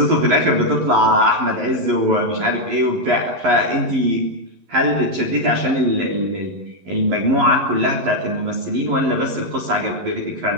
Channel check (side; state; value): left; late; 11 ms